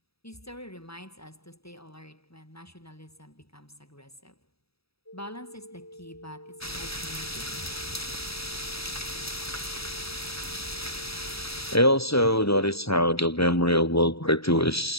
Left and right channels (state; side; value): late; right; 0.77 ms